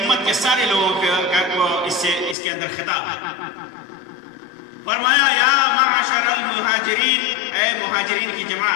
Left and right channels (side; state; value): right; drops out; at 2.4 s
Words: کے سارے لوگوں کو اس کے اندر خطاب ہے۔ فرمایا، یا معاشر المہاجرین، اے مہاجرین کی